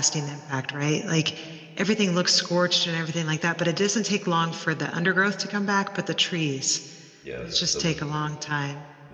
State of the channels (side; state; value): both; identical; correlation 1.00